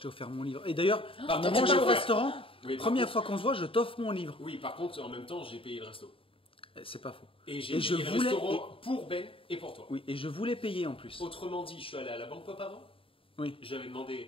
t'ai offert mon livre. Et d'ailleurs, Par on a contre, mangé j'ai au offert. restaurant. Oui, par Première contre- fois qu'on se voit, je t'offre mon livre. Oui, par contre, en même temps, j'ai payé le resto. C'est pas faux. Et j'ai Et je payé le voulais- restaurant pour Ben et pour toi. Oui, et je voulais payer en plus. Autrement dit, je suis allé à la Banque Pop avant. Oui. J'avais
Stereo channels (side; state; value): right; late; 0.26 ms